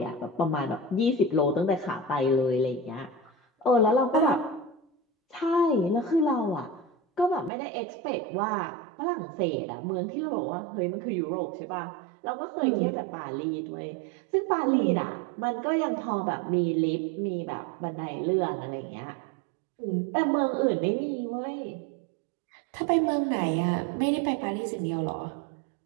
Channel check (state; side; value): drops out; left; at 7.5 s